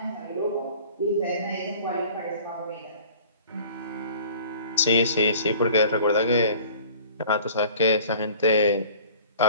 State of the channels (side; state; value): both; inverted; correlation -0.47